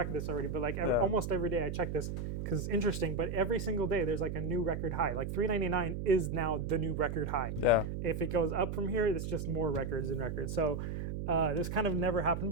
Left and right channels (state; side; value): noise; right; hum, 4 dB below the sound